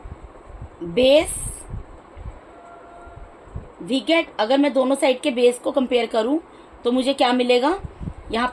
base we get, अगर मैं दोनों साइड के बेस को कंपेयर करूँ तो मुझे क्या मिलेगा, यहाँ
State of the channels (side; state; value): both; identical; correlation 1.00